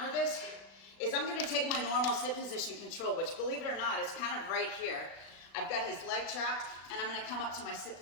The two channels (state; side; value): late; right; 36 ms